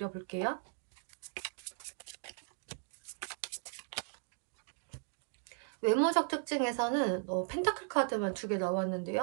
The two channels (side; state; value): left; silent; 53 dB below the other